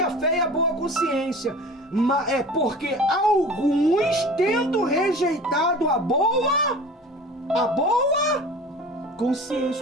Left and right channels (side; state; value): both; normal; correlation 0.40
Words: a fé e a boa consciência. É porque alguns, tendo rejeitado a boa